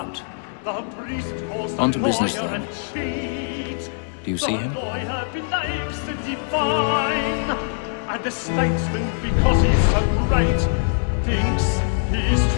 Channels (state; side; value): silent; right; digital silence